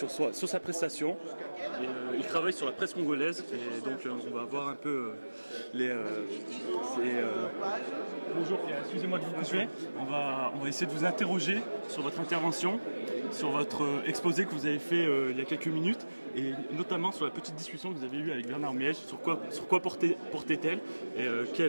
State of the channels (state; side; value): inverted; both; correlation -1.00